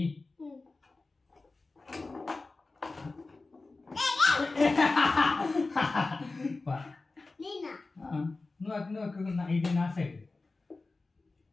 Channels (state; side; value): quieter; right; 3.5 dB